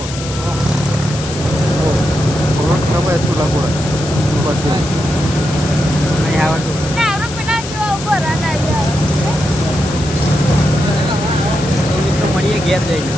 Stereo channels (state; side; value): noise; left; hiss, 11 dB below the sound